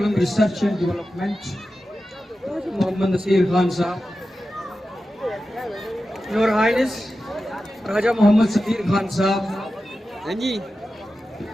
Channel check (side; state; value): both; normal; correlation 0.93